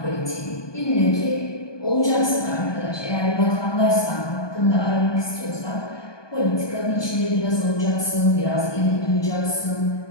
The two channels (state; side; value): late; right; 1.2 ms